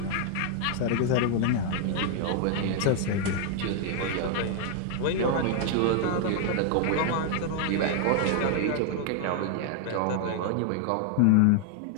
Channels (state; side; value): different; both; correlation 0.00